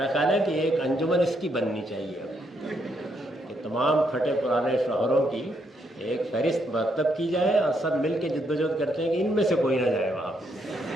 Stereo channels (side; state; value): both; normal; correlation 0.76